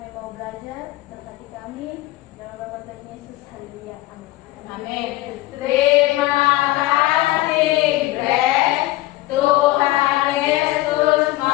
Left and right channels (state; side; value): quieter; right; 17.7 dB